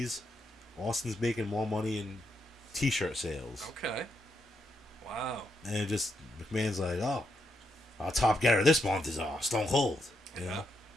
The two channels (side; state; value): both; normal; correlation 0.81